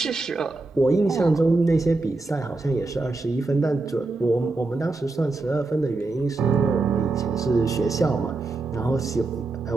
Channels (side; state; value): left; quieter; 3.4 dB